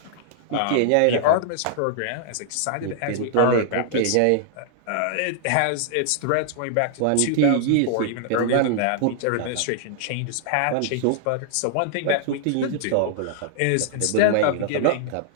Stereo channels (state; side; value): different; both; correlation -0.01